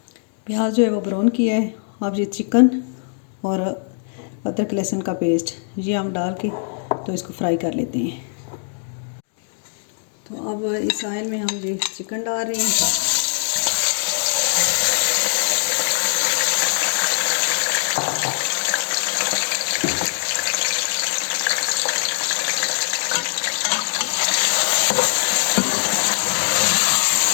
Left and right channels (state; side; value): silent; right; 65 dB below the other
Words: प्याज जो है वो ब्राउन किया है, अब ये चिकन और अदरक लहसुन का पेस्ट ये हम डाल के तो इसको फ्राई कर लेते हैं। तो अब इस ऑयल में हम ये चिकन डाल रहे हैं।